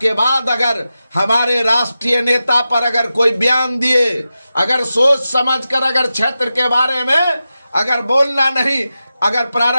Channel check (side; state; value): both; inverted; correlation -0.92